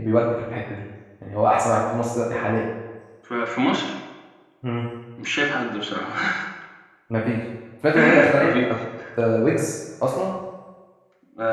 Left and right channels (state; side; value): identical; both; correlation 1.00